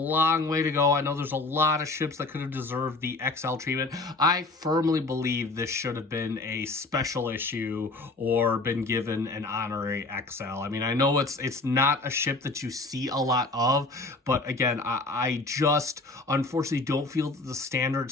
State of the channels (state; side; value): quieter; right; 3.2 dB